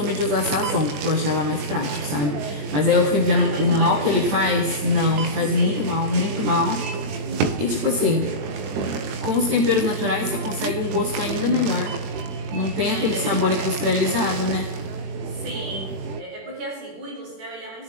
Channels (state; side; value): late; left; 20 ms